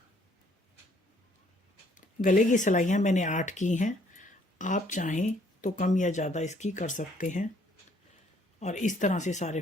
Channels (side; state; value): both; normal; correlation 0.64